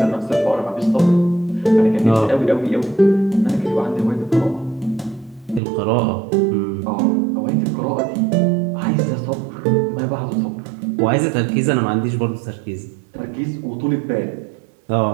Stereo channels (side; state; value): left; drops out; at 5.6 s